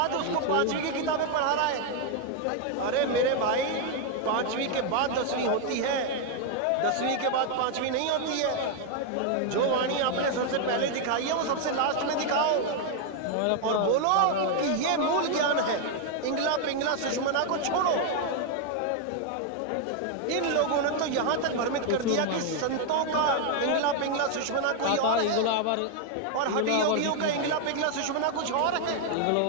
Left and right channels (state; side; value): different; both; correlation 0.00